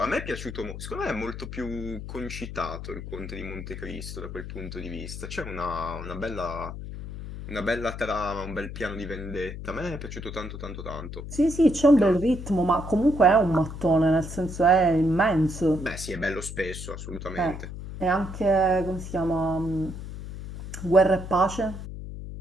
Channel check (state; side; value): noise; left; hum, 9 dB below the sound